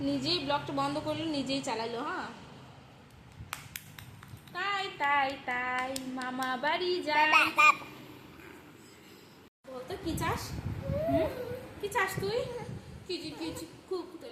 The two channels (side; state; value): both; identical; correlation 1.00